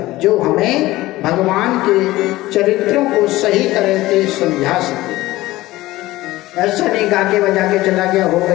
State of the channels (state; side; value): quieter; right; 17.7 dB